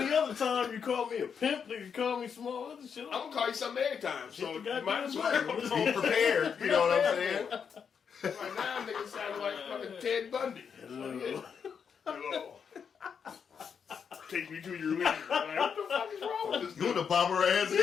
other time you call me a pimp, you call me small other shit. I'm going to call you something every time. So Hit the you might as well. goddamn Be prepared, you know what I'm saying? Right now, niggas sound like fucking Ted Bundy. Hello. Hello. Take me to your leader. Like, what the fuck is wrong with this You dude? the bomber ass in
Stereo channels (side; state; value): right; quieter; 6.8 dB